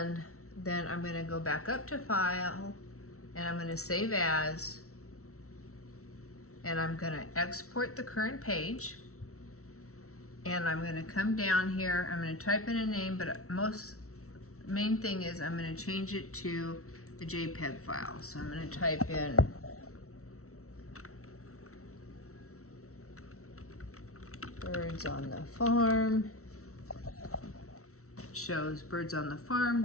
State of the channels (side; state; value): right; late; 0.64 ms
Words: then I'm going to go back up to File, and I'm going to Save As, and I'm going to export the current page, and I'm going to come down here. I'm going to type in a name, but main thing is I'm going to change it to a JPEG file. So I'm going to type in Birds on the Farm. shows birds on the farm,